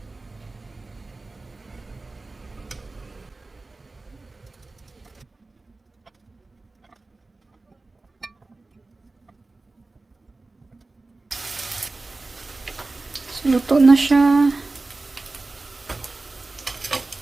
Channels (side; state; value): left; quieter; 3.4 dB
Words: So, luto na siya.